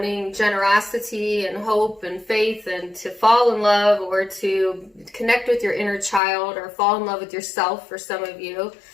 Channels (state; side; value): drops out; right; at 6.2 s